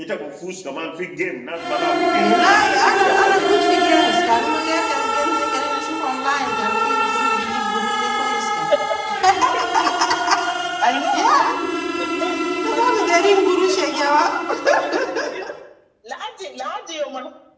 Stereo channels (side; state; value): both; identical; correlation 1.00